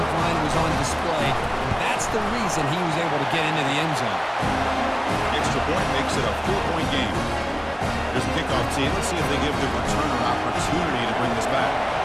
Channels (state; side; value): identical; both; correlation 1.00